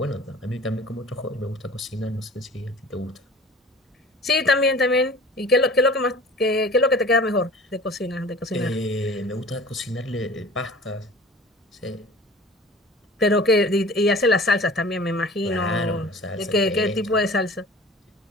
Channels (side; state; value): both; normal; correlation 0.43